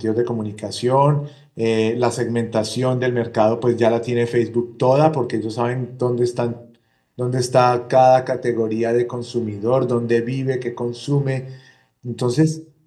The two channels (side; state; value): both; identical; correlation 1.00